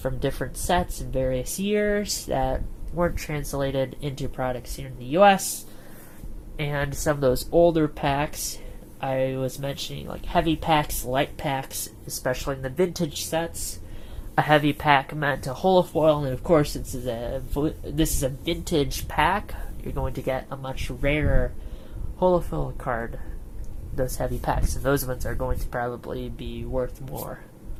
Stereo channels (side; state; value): both; identical; correlation 1.00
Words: different sets in various years that weren't translated into products here in the US. And some of those older packs, I was mentioning, like heavy packs, light packs, especially in the vintage sets. A heavy pack meant a holofoil, and of course, this is a vintage pack. You're going to get a much rarer holofoil card. Those heavy packs, and those ones are going to probably be worth more.